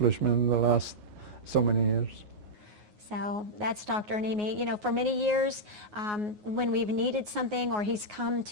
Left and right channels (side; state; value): left; late; 9.5 ms